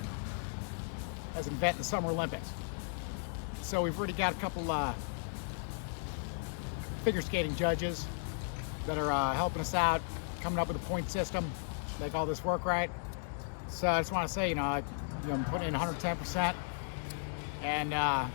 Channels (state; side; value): silent; right; digital silence